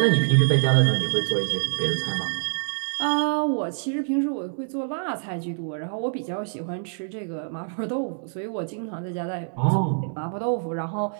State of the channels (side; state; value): left; silent; 61 dB below the other